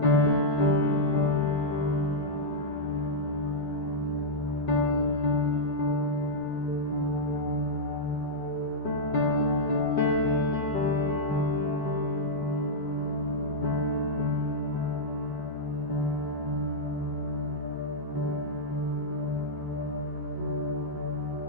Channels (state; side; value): late; right; 5.4 ms